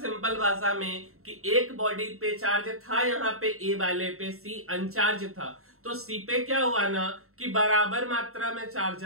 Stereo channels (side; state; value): left; late; 0.63 ms